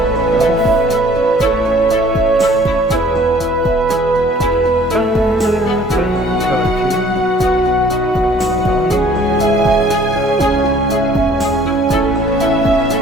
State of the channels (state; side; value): normal; both; correlation 0.55